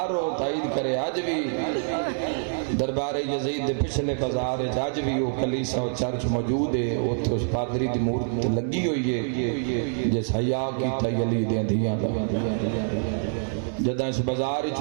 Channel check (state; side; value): silent; left; 60 dB below the other